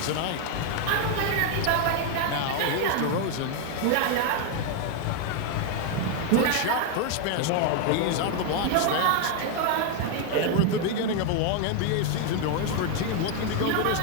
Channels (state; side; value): different; both; correlation 0.01